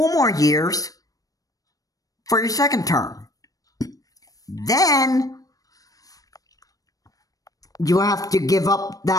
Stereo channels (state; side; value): late; right; 0.17 ms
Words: more years for your second term. Then you have to give up